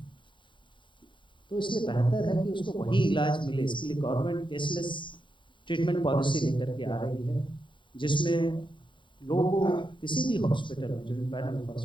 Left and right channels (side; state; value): right; late; 0.23 ms